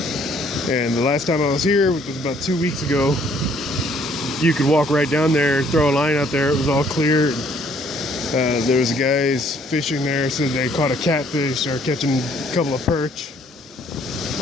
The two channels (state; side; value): normal; both; correlation 0.62